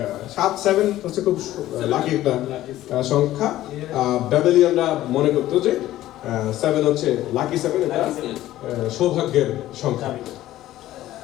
7 হচ্ছে খুব লাকি একটা সংখ্যা। ব্যাবেলিয়ানরা মনে করতো যে 7 হচ্ছে লাকি 7, এটা সৌভাগ্যের সংখ্যা।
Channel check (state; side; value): quieter; right; 14.5 dB